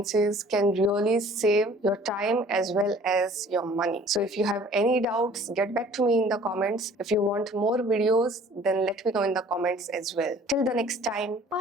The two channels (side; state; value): both; normal; correlation 0.52